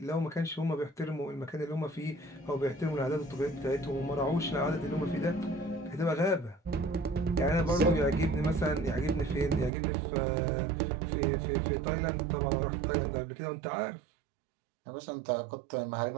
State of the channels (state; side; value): drops out; left; at 9.7 s